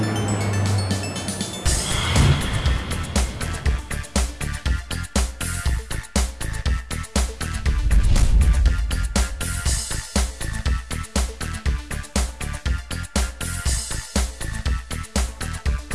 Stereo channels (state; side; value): identical; both; correlation 1.00